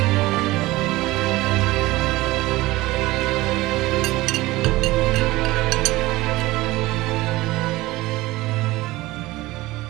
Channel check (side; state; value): left; quieter; 19.0 dB